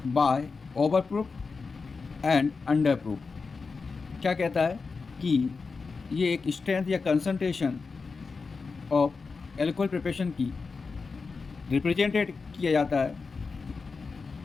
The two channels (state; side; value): quieter; right; 4.6 dB